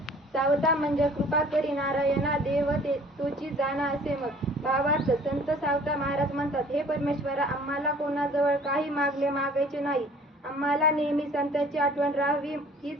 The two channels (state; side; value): normal; both; correlation 0.52